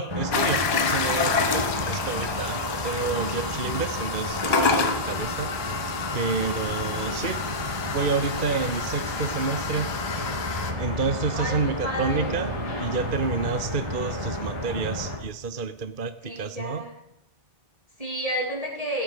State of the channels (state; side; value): late; left; 1.2 ms